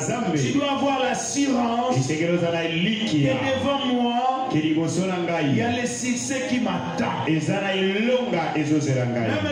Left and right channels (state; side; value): identical; both; correlation 1.00